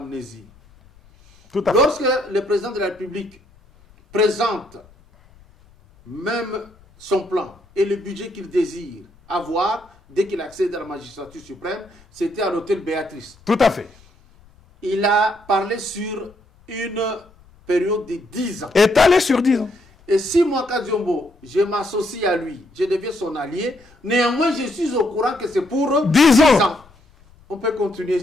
Lorsque le président de la République présente même son plan et le budget qu'il désire avoir dès qu'il accède à la magistrature suprême, c'était à l'hôtel Béatrice. Tout à fait. Il a parlé sur une période de 10 ans. Étalé sur 10 ans. Et si moi, Kadiombo, je m'associe à lui, je deviens son allié, néanmoins je suis au courant que c'est pour 10 ans. On peut continuer,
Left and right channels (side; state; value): left; noise; rumble, 28 dB below the sound